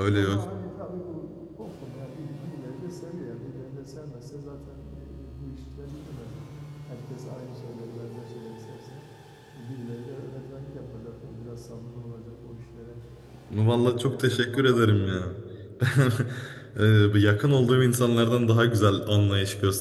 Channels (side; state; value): both; identical; correlation 1.00